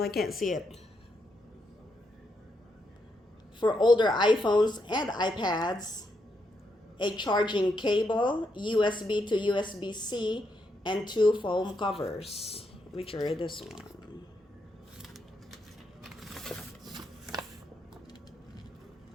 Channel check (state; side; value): normal; both; correlation 0.80